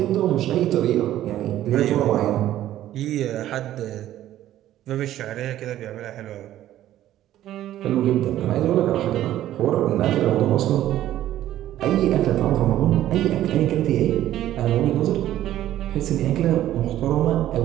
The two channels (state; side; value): quieter; left; 13.0 dB